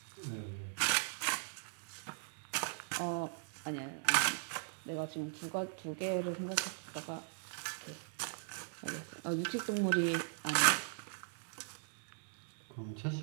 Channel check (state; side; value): silent; left; digital silence